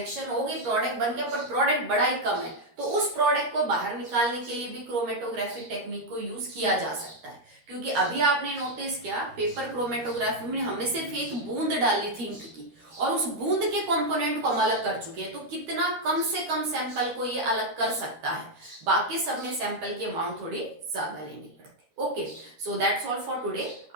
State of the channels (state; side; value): late; left; 13 ms